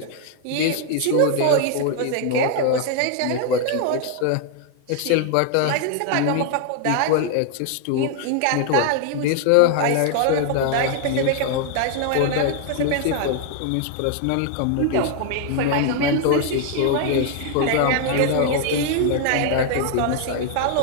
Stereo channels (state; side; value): different; both; correlation 0.00